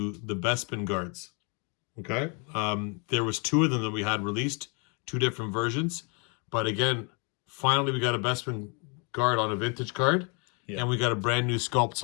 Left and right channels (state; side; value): quieter; right; 35.0 dB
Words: the Bespin guards. Okay. There was 2 of them that we had released, 2 different versions. But again, finally we got a Bespin guard on a vintage card. Yeah. And we got a brand new sculpt.